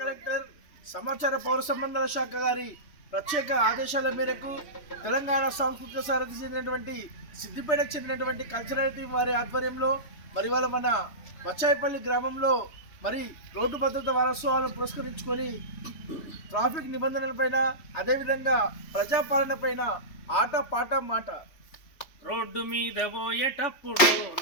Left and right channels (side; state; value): right; late; 3.3 ms